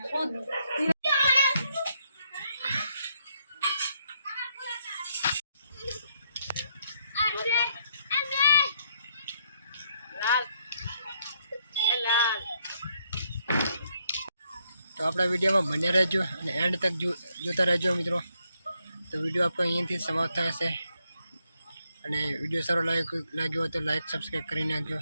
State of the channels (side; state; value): both; inverted; correlation -0.75